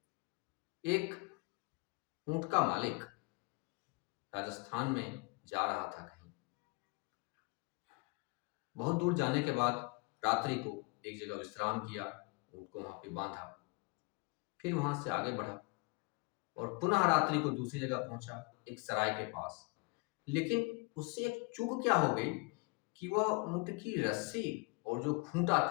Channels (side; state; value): right; quieter; 29.6 dB